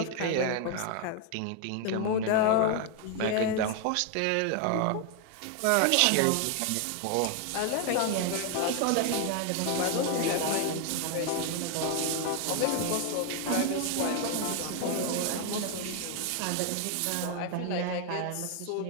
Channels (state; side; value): different; both; correlation 0.00